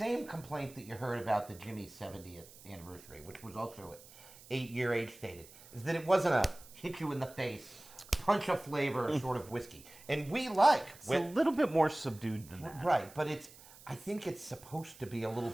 complaint that you heard about the Jimmy's 70th anniversary, which was also 8-year age stated, is that it wasn't a hit you in the face, punch of flavor sort of whiskey. And we like it's a little bit more subdued than that. right, but I think it's supposed to be a little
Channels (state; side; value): noise; right; hiss, 20 dB below the sound